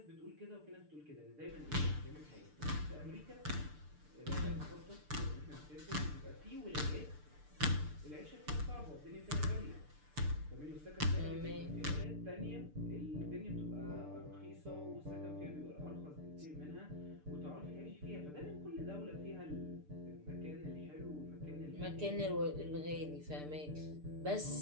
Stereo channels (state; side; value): late; left; 6.7 ms